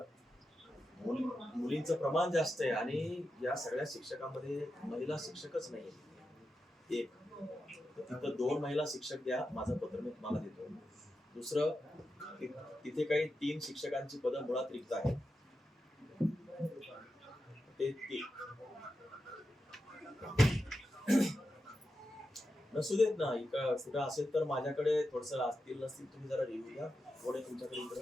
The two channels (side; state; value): both; normal; correlation 0.89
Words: मुलींचं प्रमाण जास्त आहे आणि या सगळ्या शिक्षकांमध्ये महिला शिक्षकच नाही. एक तिथं 2 महिला शिक्षक द्या, माझं पत्र मी तुम्हाला देतो. दुसरं, तिथे काही 3 शिक्षकांची पदं मुळात रिक्त आहेत. ते नसू देत ना, कुठं असेल तर माझ्याकडे थोडस असतील नसतील तुम्ही जरा रिव्ह्यू द्या. कोण आहे तुमच्याकडे इकडं?